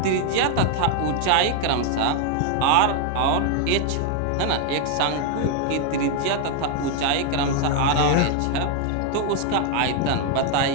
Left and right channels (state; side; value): different; both; correlation 0.00